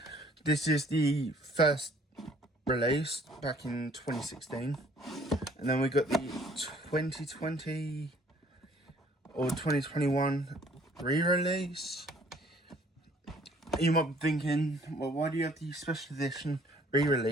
This is the first release back in 2016. And then we got the 2020 or 2021 re-release. You might be thinking, well, why do you have the special edition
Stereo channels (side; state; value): both; normal; correlation 0.58